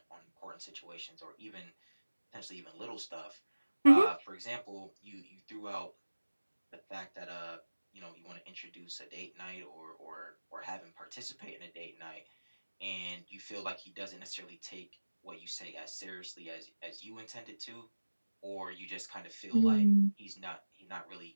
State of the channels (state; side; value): inverted; both; correlation -1.00